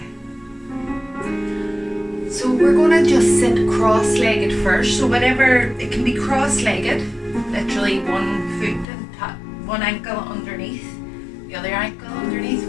So we're going to just sit cross-legged first. So whenever, it can be cross-legged, literally one foot and one ankle underneath, the other ankle underneath,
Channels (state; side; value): drops out; right; at 8.8 s